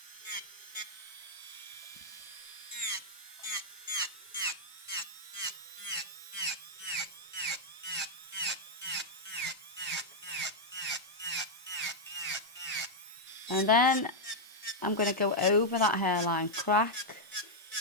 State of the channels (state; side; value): normal; both; correlation -0.02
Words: And then I'm going to go over that hairline crack